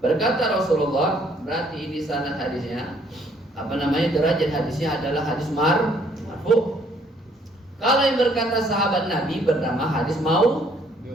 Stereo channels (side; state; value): both; normal; correlation 0.64